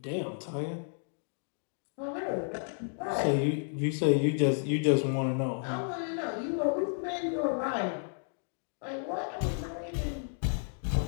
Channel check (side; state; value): right; silent; digital silence